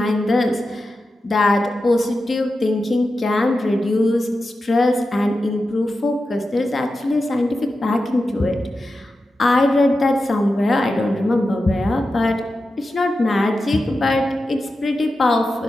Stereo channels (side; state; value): both; normal; correlation 0.91